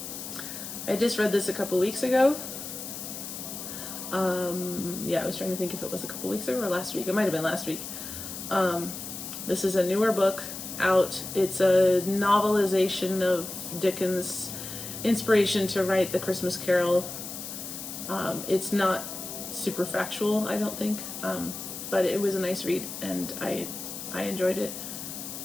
I just read this a couple weeks ago. Yeah, I was trying to think if it was a couple weeks ago or last week. It might have been last week. This is a newer book out. It's a novelization of Dickens' inspiration to write The Christmas Carol. It's not super factual, I don't think, but it was a nice read and I enjoyed it.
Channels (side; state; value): left; noise; hiss, 8 dB below the sound